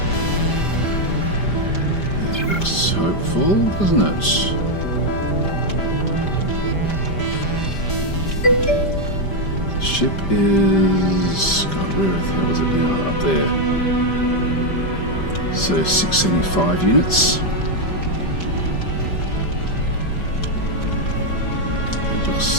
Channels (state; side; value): late; right; 5.1 ms